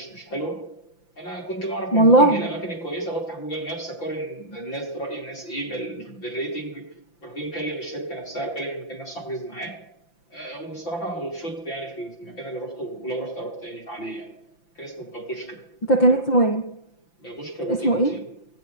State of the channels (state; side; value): late; right; 5.9 ms